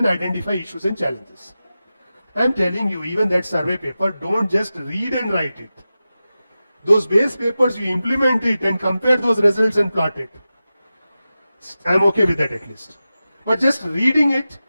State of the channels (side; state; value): both; inverted; correlation -0.93